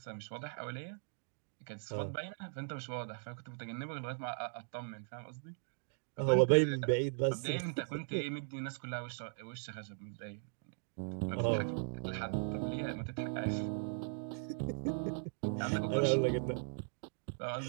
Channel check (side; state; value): left; silent; digital silence